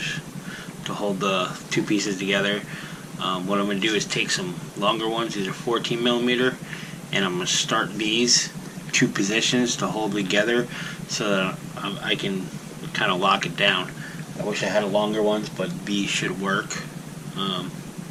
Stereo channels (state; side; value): identical; both; correlation 1.00